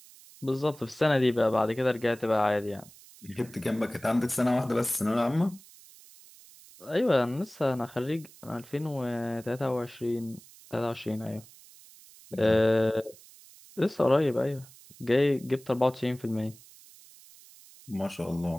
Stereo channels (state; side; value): noise; right; hiss, 22 dB below the sound